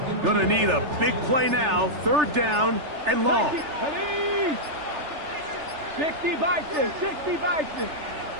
Gonna need a big play now. 3rd down and long. 60 Bison. 60 Bison.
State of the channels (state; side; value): late; left; 3.4 ms